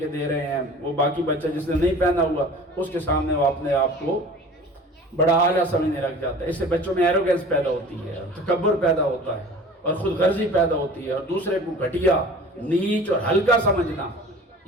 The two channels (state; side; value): normal; both; correlation 0.43